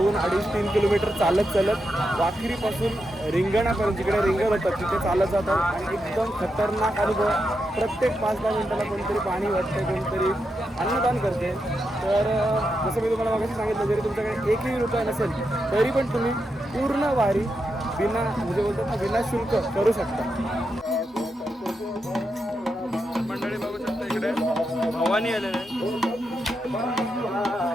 किलोमीटर चालत वाखरीपासून रिंगणापर्यंत जिकडे रिंगण होतं तिथे चालत जातात आणि एकदम खतरनाक अनुभव. प्रत्येक 5-10 मिनिटाला कोणतरी पाणी वाटते, कोणतरी अन्नदान करते. तर जसं मी तुम्हाला मागाशी सांगितलं, जरी तुमच्याकडे एकही रुपया नसेल तरी पण तुम्ही पूर्ण वारी म्हणजे बोलतात ना विना शुल्क करू शकता. मंडळी बघू शकता इकडे भवानी आलेले आहे.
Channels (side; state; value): both; normal; correlation 0.85